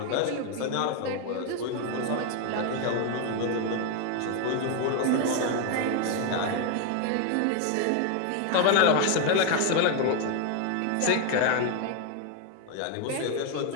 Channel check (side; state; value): both; different; correlation 0.01